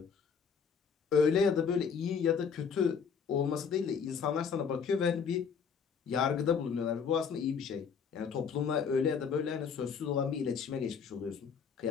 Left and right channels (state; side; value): quieter; right; 6.4 dB